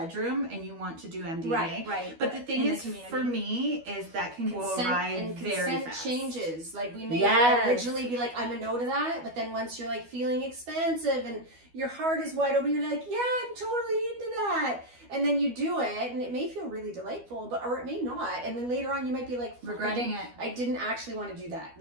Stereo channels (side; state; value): left; late; 12 ms